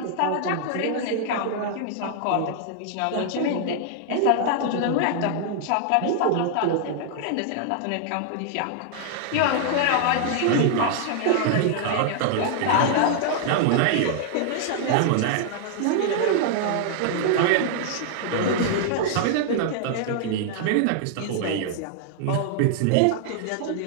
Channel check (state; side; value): different; both; correlation -0.01